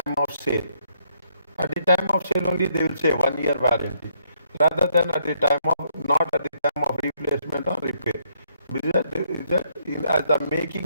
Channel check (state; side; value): inverted; both; correlation -0.71